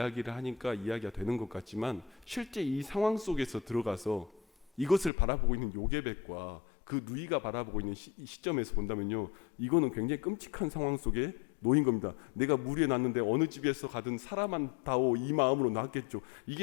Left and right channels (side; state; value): right; drops out; at 5.1 s